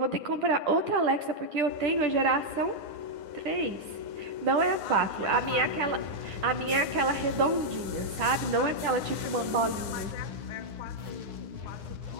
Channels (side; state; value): left; late; 10 ms